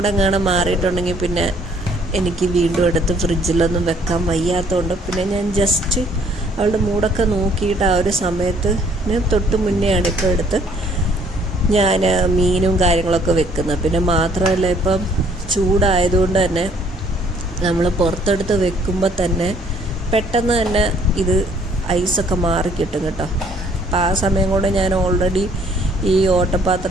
മാറിയിട്ടുണ്ടെങ്കിൽ പിന്നെ എനിക്ക് വീണ്ടും എടുത്ത് ഫ്രിഡ്ജിലൊന്നും വെക്കാൻ വയ്യാത്തതുകൊണ്ട് പിന്നെ ഞാൻ ജസ്റ്റ് അവളുടെ മൂടൊക്കെ നോക്കിയിട്ട് ആ ഒരു സമയത്ത് തൊട്ട് മുന്നെയാണ് ഇപ്പോൾ എടുത്ത് ഞാൻ മീനും കാര്യങ്ങളൊക്കെ വെക്കുന്നത്. പിന്നെ മാത്രമല്ല ഇപ്പം ചൂടായതുകൊണ്ട് തന്നെ നമ്മൾ പുറത്തെടുത്ത് വെക്കുമ്പോൾ തന്നെ പെട്ടെന്ന് തന്നെ ഇത് ഐസൊക്കെ മാറിക്കിട്ടും കേട്ടോ. അപ്പം ആ സമയം കൊണ്ട് ഞാൻ ഓൾറെഡി ഈ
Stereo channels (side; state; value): both; normal; correlation 0.62